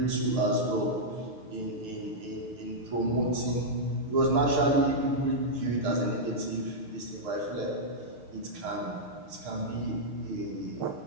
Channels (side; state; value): left; late; 6.6 ms